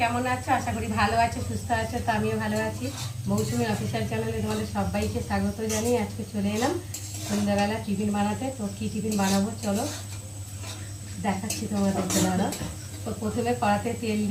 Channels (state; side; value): identical; both; correlation 1.00